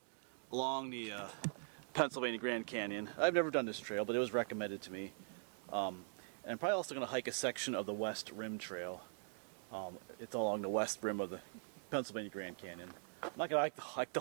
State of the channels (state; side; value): silent; left; digital silence